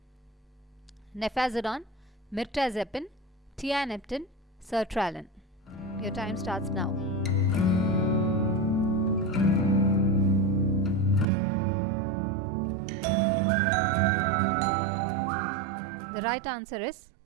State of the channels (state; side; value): drops out; left; at 11.2 s